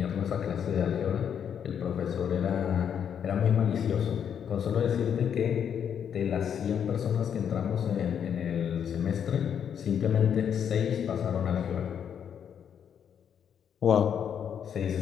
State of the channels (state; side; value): quieter; right; 8.3 dB